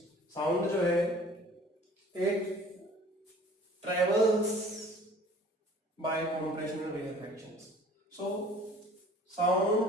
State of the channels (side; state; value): both; normal; correlation 0.49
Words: साउंड जो है एक travels by compressional reactions. So